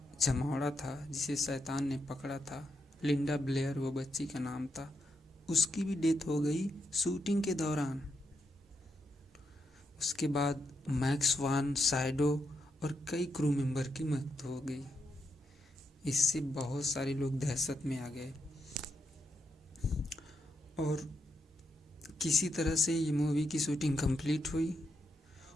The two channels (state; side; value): normal; both; correlation 0.82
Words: जमावड़ा था, जिसे शैतान ने पकड़ा था, लिंडा ब्लेयर वो बच्ची का नाम था, उसकी भी डेथ हो गई शूटिंग के दौरान। उसके बाद मैक्स वान साइडो और कई क्रू मेंबर की मौत हो गई। इससे बहुत सारे लोग दहशत में आ गए और किसी तरह से ये मूवी की शूटिंग कंप्लीट हुई।